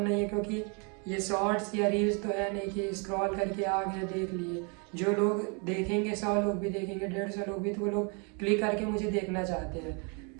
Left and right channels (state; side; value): quieter; left; 35.3 dB